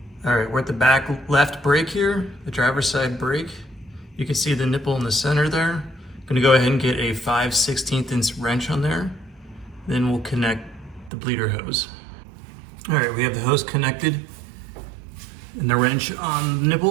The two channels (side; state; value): left; drops out; at 11.1 s